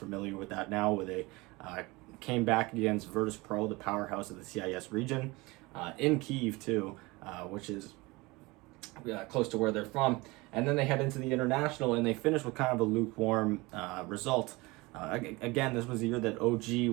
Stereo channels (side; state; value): left; quieter; 23.3 dB